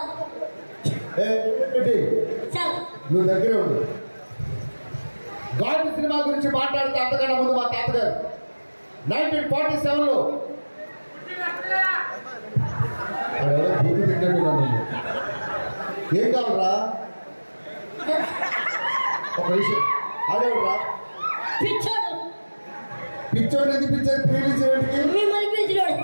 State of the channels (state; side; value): inverted; both; correlation -1.00